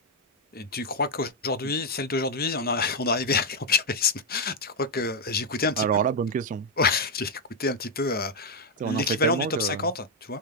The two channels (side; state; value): both; normal; correlation 0.01